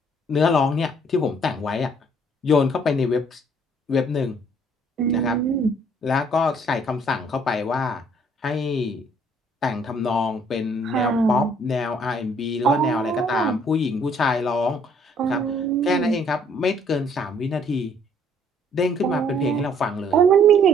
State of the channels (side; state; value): both; normal; correlation 0.62